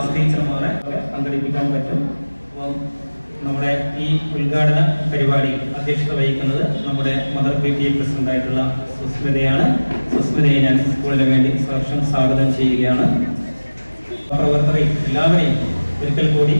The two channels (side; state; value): both; inverted; correlation -1.00